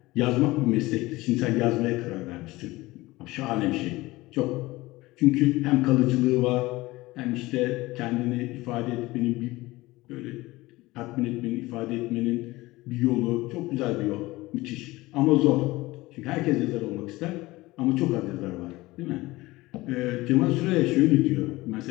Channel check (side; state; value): right; quieter; 19.8 dB